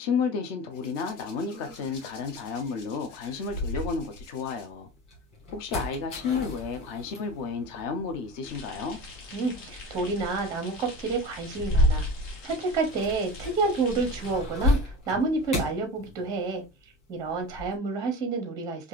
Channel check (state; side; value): normal; both; correlation 0.31